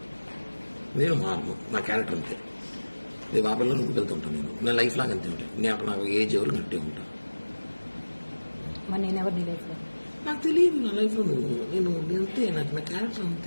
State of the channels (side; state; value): both; inverted; correlation -1.00